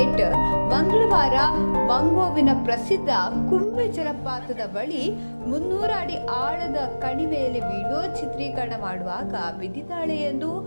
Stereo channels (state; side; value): inverted; both; correlation -1.00